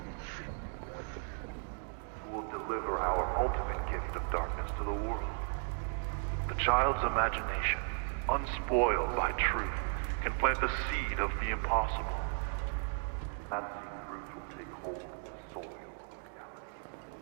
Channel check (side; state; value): left; silent; 54 dB below the other